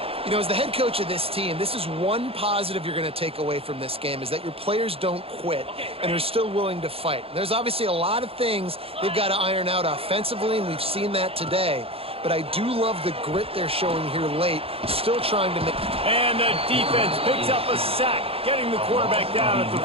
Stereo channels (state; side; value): late; left; 0.28 ms